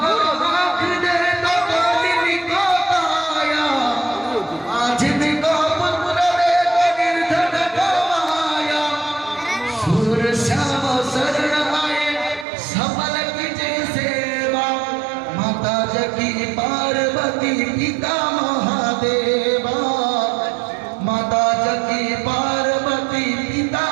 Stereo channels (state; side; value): drops out; left; at 12.5 s